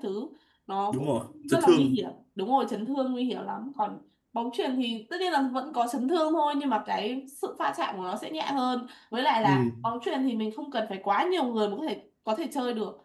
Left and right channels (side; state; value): both; identical; correlation 1.00